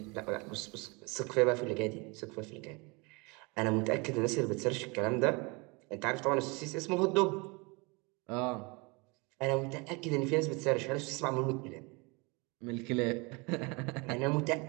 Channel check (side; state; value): left; quieter; 28.2 dB